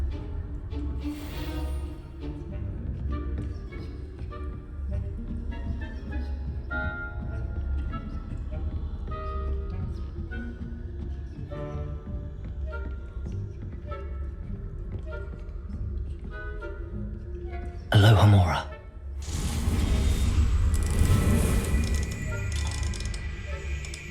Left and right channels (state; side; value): identical; both; correlation 1.00